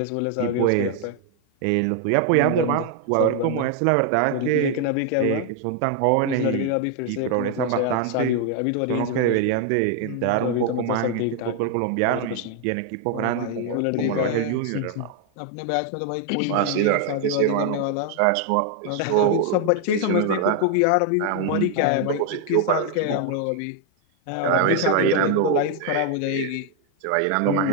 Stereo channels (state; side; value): different; both; correlation 0.00